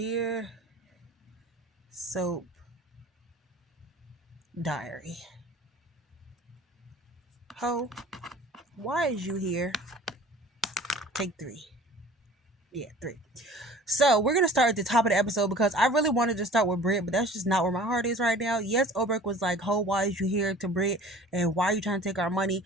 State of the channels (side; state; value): both; normal; correlation 0.46